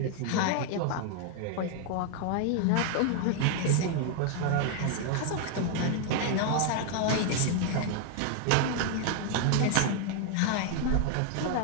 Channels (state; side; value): different; both; correlation 0.00